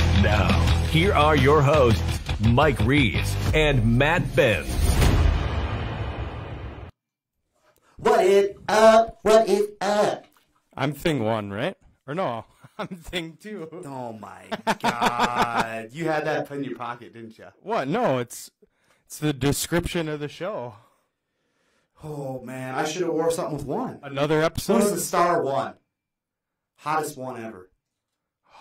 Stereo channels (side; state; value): both; identical; correlation 1.00